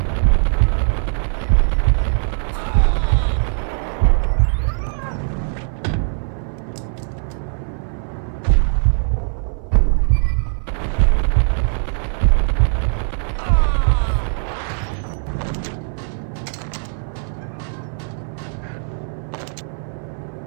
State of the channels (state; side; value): silent; left; 59 dB below the other